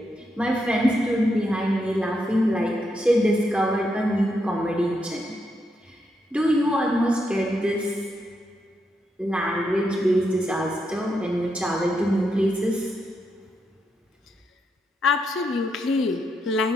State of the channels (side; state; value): both; normal; correlation 0.81